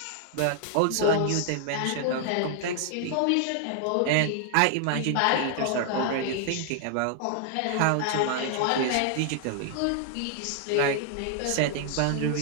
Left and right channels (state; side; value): different; both; correlation 0.00